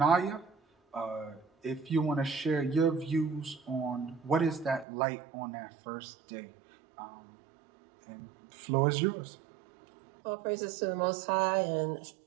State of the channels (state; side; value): drops out; left; at 4.9 s